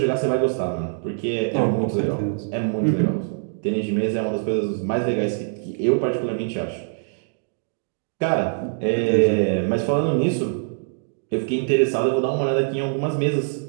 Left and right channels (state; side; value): silent; left; digital silence